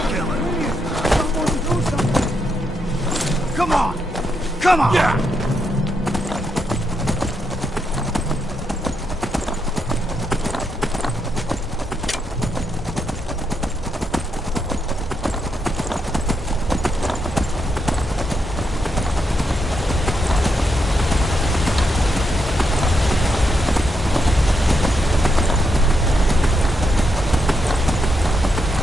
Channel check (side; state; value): both; normal; correlation 0.81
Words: Come on! Come on! Yeah.